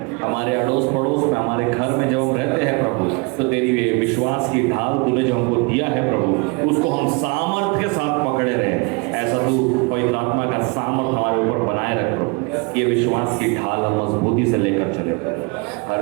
हमारे अड़ोस पड़ोस में, हमारे घर में जब हम रहते हैं प्रभु, तो तेरी विश्वास की ढाल तूने जो हमको दिया है प्रभु, उसको हम सामर्थ्य के साथ पकड़े रहे। ऐसा तू पवित्र आत्मा का सामर्थ हमारे ऊपर बनाए रख प्रभु, ये विश्वास की ढाल हम मजबूती से लेकर चले प्रभु।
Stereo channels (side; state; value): left; quieter; 30.0 dB